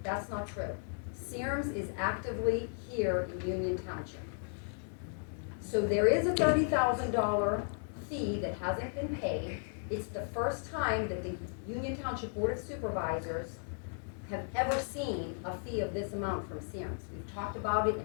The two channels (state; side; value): silent; right; 54 dB below the other